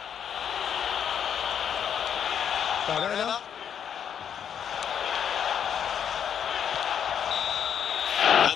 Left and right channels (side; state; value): right; quieter; 8.4 dB